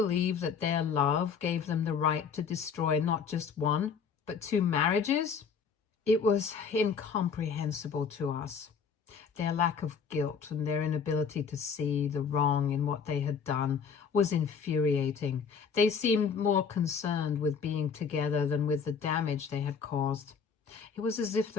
that their love gave them the right to destroy not just one, but 2 marriages? It was incomprehensible to us. Their lack of guilt and their inability to see the wrong in what they had done was infuriating. They seemed more concerned with being together than with the damage they had caused. It was as if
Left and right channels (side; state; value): right; quieter; 6.2 dB